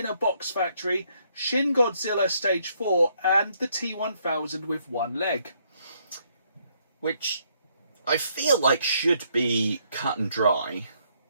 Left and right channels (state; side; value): inverted; both; correlation -0.71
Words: a Box Factory, Shin Godzilla Stage 4, and the T-1000 with one leg. Which I feel like should be cut and dry.